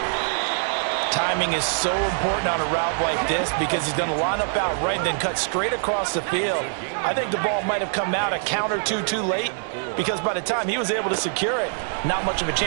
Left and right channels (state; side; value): silent; left; digital silence